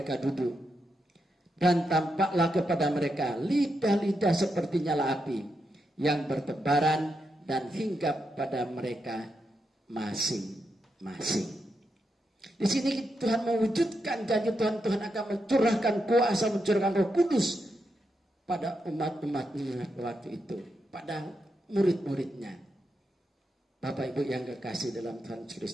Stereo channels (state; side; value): normal; both; correlation 0.84